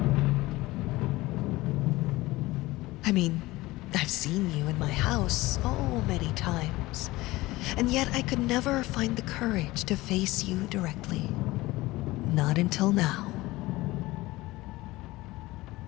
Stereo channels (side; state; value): right; quieter; 19.5 dB